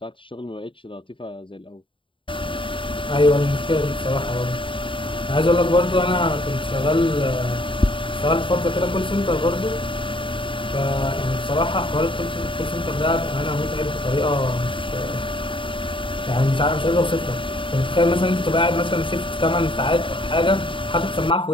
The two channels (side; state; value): right; late; 0.25 ms